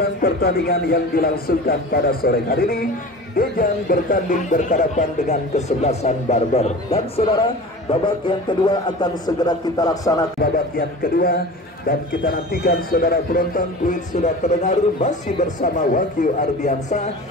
pertandingan yang dilangsungkan pada sore hari ini. Dejang bertanding berhadapan dengan kesebelasan Barber. Dan saudara, babak yang kedua akan segera kita laksanakan. Babak yang kedua, dan kita nantikan saudara penonton. Tweet sudah terdengar, masih bersama Wahyu Ardiansa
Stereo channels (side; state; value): both; normal; correlation 0.36